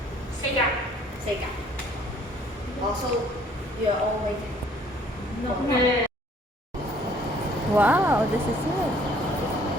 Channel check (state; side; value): normal; both; correlation 0.59